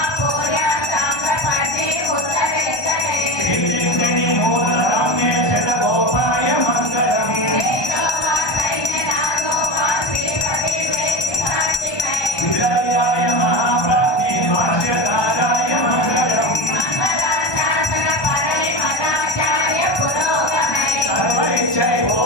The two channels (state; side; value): late; right; 1.2 ms